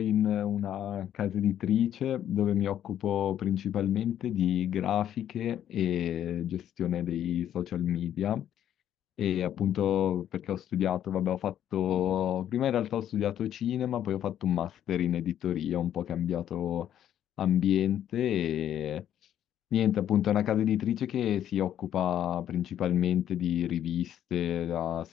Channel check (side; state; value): right; quieter; 10.7 dB